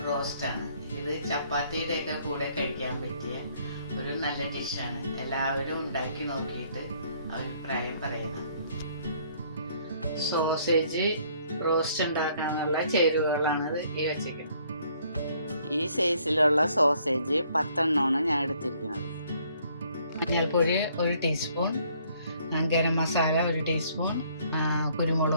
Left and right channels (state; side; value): inverted; both; correlation -0.64